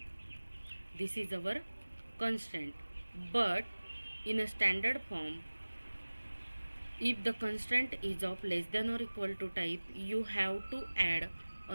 This is our constant. But in a standard form, if the constant is of less than or equal to type, you have to add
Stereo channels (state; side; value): inverted; both; correlation -1.00